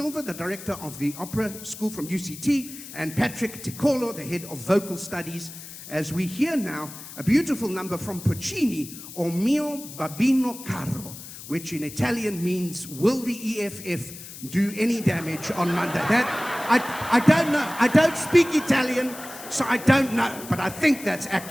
the director of the Opera School from UCT, and Patrick Ticolo, the head of vocal studies, as we hear now a beautiful number from Puccini, O mio babino caro, which in Italian means, will the EFF do any damage on Monday? That, I don't know. I don't speak Italian, so I don't know, but I think that's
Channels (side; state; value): left; noise; hiss, 14 dB below the sound